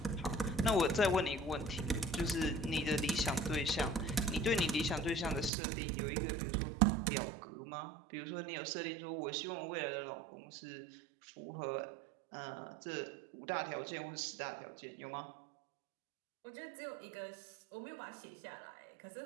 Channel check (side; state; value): left; drops out; at 5.5 s